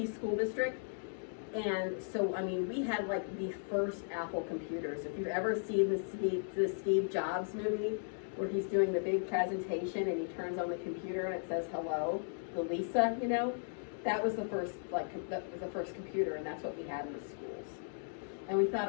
school district. And so, I mean, we had like the first Apple computers. If you've ever seen the Steve Jobs movie where he's doing the big presentation and he turns on the computer and it says hello, the Lisa, you know, that was the first computer, and that's what we had in the schools. And we thought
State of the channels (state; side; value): silent; right; digital silence